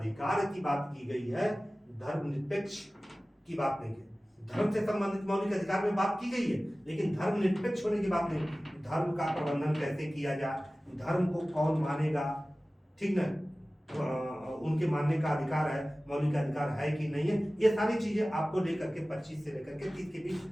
की बात की गई है, धर्मनिरपेक्ष की बात नहीं है। धर्म से संबंधित मौलिक अधिकार में बात की गई है, लेकिन धर्मनिरपेक्ष होने की बात नहीं। धर्म का प्रबंधन कैसे किया जाए, धर्म को कौन मानेगा, ठीक ना, उनके मानने का अधिकार है, मौलिक अधिकार है कि नहीं है, ये सारी चीजें आपको लेकर के 25 से लेकर के 30 के बीच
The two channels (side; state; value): both; normal; correlation 0.97